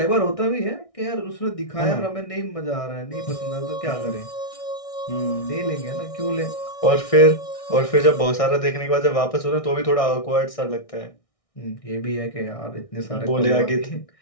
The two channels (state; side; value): late; right; 1.6 ms